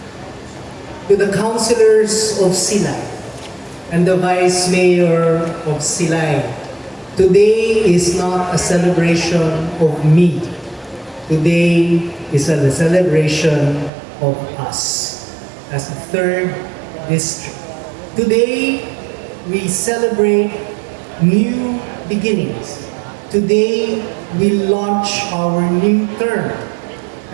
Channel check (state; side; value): drops out; left; at 13.9 s